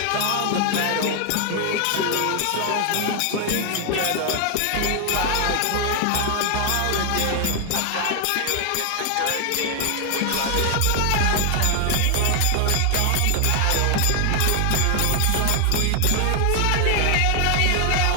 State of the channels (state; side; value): different; both; correlation 0.00